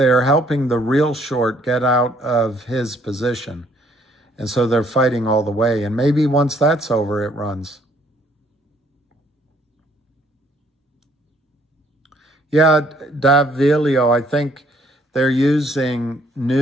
helping the real short get out of his position. And so they're fighting all the way. And maybe once that's over, it runs. Yeah, Davilio, I think they're using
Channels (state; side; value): normal; both; correlation 0.65